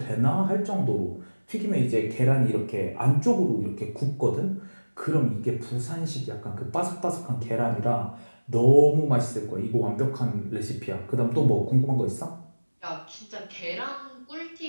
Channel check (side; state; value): both; inverted; correlation -1.00